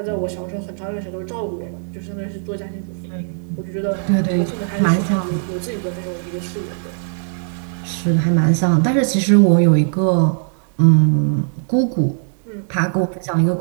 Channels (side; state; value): left; silent; digital silence